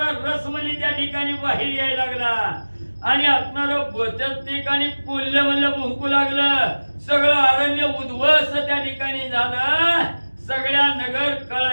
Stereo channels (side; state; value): both; inverted; correlation -1.00